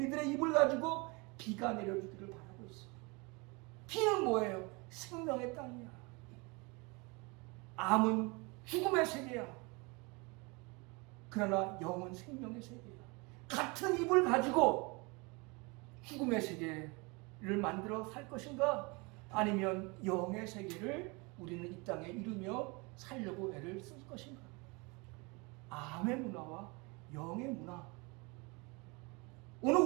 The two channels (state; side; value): quieter; left; 28.1 dB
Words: 입을 가지고 비가 내려주기를 바라고 있어. 비는 뭐예요? 생명의 땅이야. 암은 죽음의 세계야. 그러나 영은 생명의 세계야. 같은 입을 가지고 죽음의 세계를 만들어 살 것인가? 아니면 영의 세계를 우리는 이 땅에 이루며 살려고 애를 쓸 것인가? 암의 문화와 영의 문화. 오늘